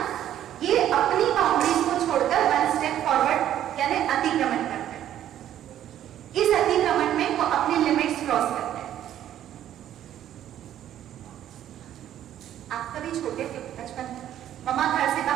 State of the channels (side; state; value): left; quieter; 11.4 dB